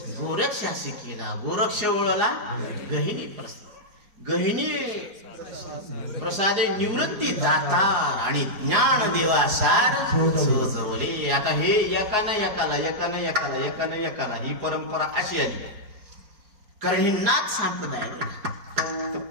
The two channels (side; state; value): left; late; 4.9 ms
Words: गोरक्षासी केला. गोरक्ष ओळला गहिनी प्रसादे निवृत्ती दातार आणि ज्ञान देवासार सजवले. आता हे एकानं एकाला ही परंपरा अशी आली, कारण ही नाथ संप्रदाय.